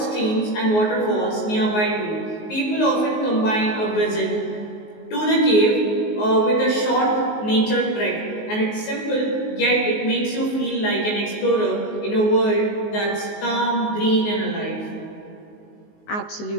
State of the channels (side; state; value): right; late; 19 ms